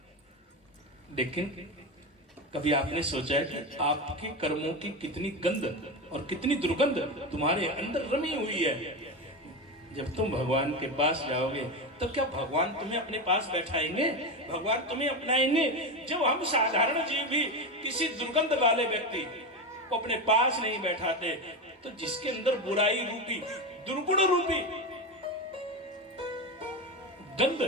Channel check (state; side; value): normal; both; correlation 0.17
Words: लेकिन कभी आपने सोचा है कि आपके कर्मों की कितनी गंध और कितनी दुर्गंध तुम्हारे अंदर रमी हुई है? जब तुम भगवान के पास जाओगे तो क्या भगवान तुम्हें अपने पास बैठाएंगे? भगवान तुम्हें अपनाएंगे? जब हम साधारण जीव भी किसी दुर्गंध वाले व्यक्ति को अपने पास नहीं बैठाते, तो जिसके अंदर बुराई रूपी, दुर्गुण रूपी गंध